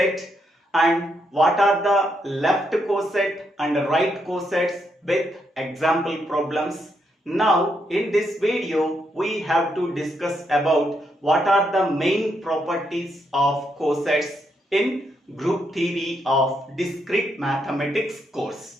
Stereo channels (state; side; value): normal; both; correlation 0.79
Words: and what are the left coset and right cosets with example problems. Now, in this video, we have to discuss about what are the main properties of cosets in Group Theory of Discrete Mathematics